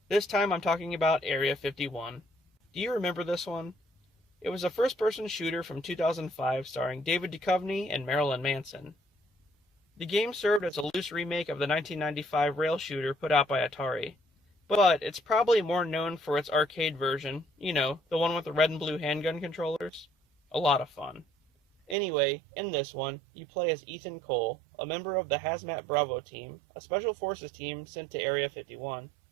This time I'm talking about Area 51. Do you remember this one? It was a first-person shooter from 2005 starring David Duchovny and Marilyn Manson. The game served as a loose remake of the 1995 rail shooter put out by Atari, but it's probably more known for its arcade version, the one with the red and blue handgun controllers. A lot of fun. Anyway, in this one, you play as Ethan Cole, a member of the Hazmat Bravo team, a special forces team sent to Area 51.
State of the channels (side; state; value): left; drops out; at 22.0 s